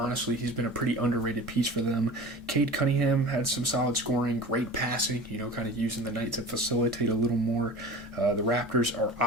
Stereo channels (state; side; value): normal; both; correlation 0.37